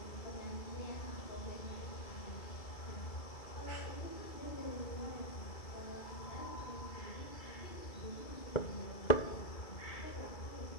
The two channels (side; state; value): right; late; 2.3 ms